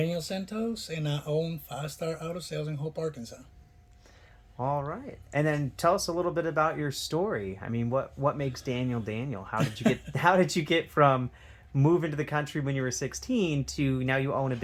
Santos, and I own Five Star Auto Sales in Hope, Arkansas. All right. And then tell us a little bit about your story. I mean, what makes Daniel Daniel? How did you get how did you get from moving to the country when you were 16 to now you own a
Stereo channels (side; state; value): both; identical; correlation 1.00